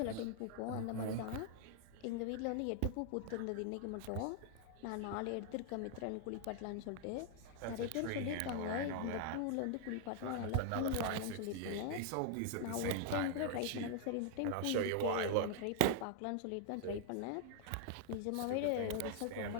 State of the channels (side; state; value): both; different; correlation 0.00